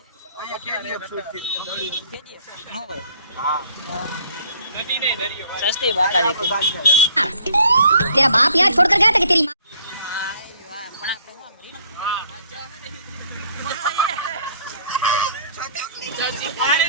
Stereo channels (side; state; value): both; inverted; correlation -0.59